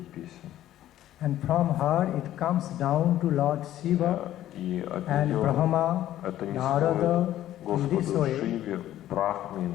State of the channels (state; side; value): quieter; right; 13.0 dB